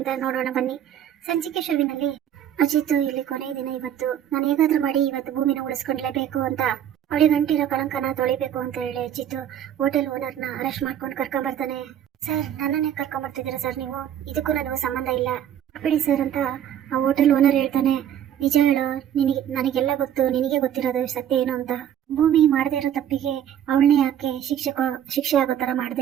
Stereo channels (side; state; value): left; quieter; 10.2 dB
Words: ನೋಡೋಣ ಬನ್ನಿ. ಸಂಚಿಕೆ ಶುರುವಿನಲ್ಲಿ ಅಜಿತ್ ಇಲ್ಲಿ ಕೊನೆಯ ದಿನ, ಇವತ್ತು ನಾನು ಹೇಗಾದ್ರೂ ಮಾಡಿ ಇವತ್ತು ಭೂಮಿನ ಉಳಿಸ್ಕೊಂಡ್ಲೇಬೇಕು ಅಂತ, ಅವಳಿಗೆ ಗಂಟಿರೋ ಕಳಂಕನ ತೊಳಿಬೇಕು ಅಂತ ಹೇಳಿ ಅಜಿತ್ ಹೋಟೆಲ್ ಓನರ್ನ ಅರೆಸ್ಟ್ ಮಾಡ್ಕೊಂಡು ಕರ್ಕೊಂಬರ್ತಾನೆ. ಸರ್, ನನ್ನನ್ನೇ ಕರ್ಕೊಂಬರ್ತಿದ್ದೀರಾ ಸರ್ ನೀವು? ಇದಕ್ಕೂ ನನಗೂ ಸಂಬಂಧ ಇಲ್ಲ ಬಿಡಿ ಸರ್ ಅಂತ ಆ ಹೋಟೆಲ್ ಓನರ್ ಹೇಳ್ತಾನೆ. ನಿಜ ಹೇಳೋ, ನನಗೆಲ್ಲ ಗೊತ್ತು, ನಿನಗೆ ಗೊತ್ತಿರೋದು ಸತ್ಯ ಏನು ಅಂತ. ಭೂಮಿ ಮಾಡದೇ ಇರೋ ತಪ್ಪಿಗೆ ಅವಳನ್ನೇ ಯಾಕೆ ಶಿಕ್ಷೆ ಆಗೋ ತರ